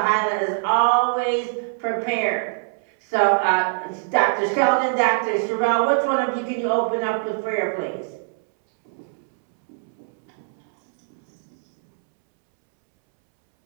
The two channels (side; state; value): left; silent; 64 dB below the other